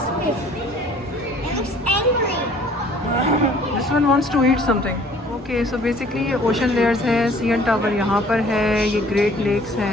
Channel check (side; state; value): both; normal; correlation 0.54